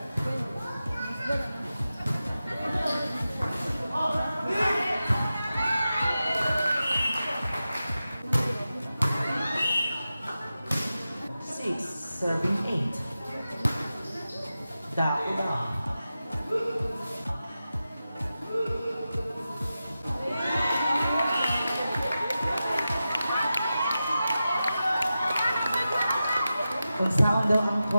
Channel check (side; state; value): both; inverted; correlation -0.93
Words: Six serving 8. Dako daw. Kung saan daw ang